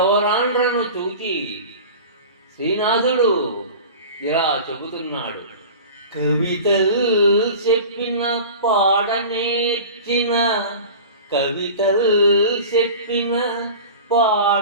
చూచి శ్రీనాథుడు ఇలా చెబుతున్నాడు. కవితలు చెప్పిన పాడనేర్చిన, కవితలు చెప్పిన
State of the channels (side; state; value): both; inverted; correlation -0.36